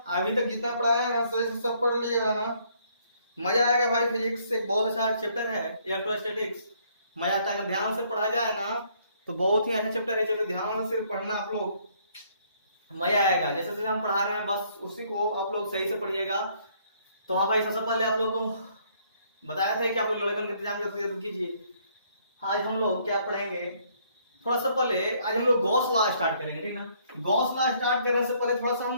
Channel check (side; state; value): both; inverted; correlation -0.66